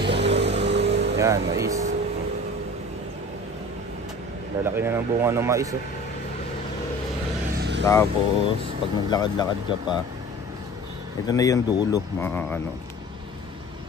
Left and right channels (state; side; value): normal; both; correlation 0.41